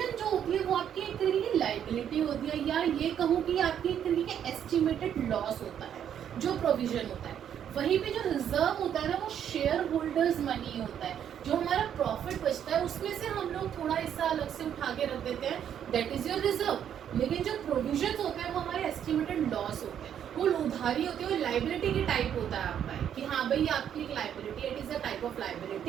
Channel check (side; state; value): left; quieter; 9.3 dB